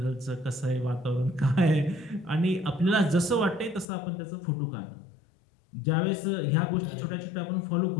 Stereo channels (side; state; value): right; drops out; at 3.9 s